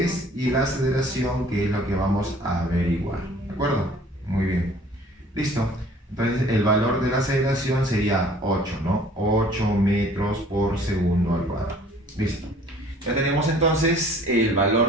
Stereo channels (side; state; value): both; normal; correlation 0.53